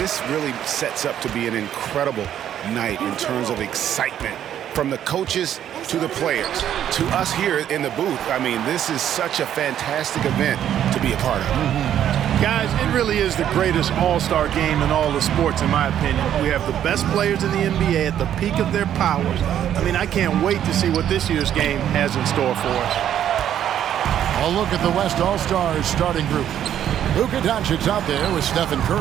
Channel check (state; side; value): quieter; left; 10.4 dB